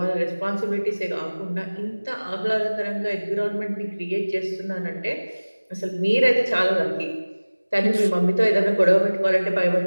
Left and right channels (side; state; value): both; inverted; correlation -1.00